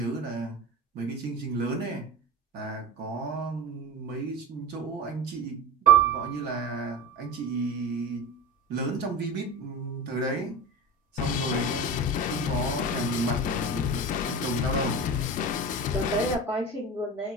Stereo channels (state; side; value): normal; both; correlation 0.28